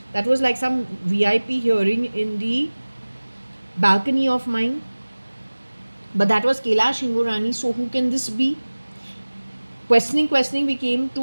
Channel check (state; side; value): inverted; both; correlation -1.00